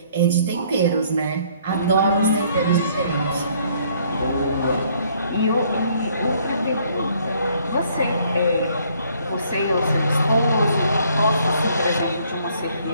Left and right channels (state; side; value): inverted; both; correlation -0.64